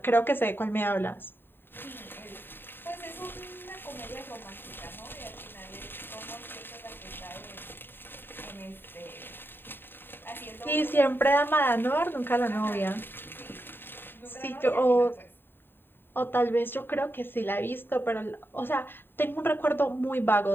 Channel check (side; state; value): right; late; 0.099 ms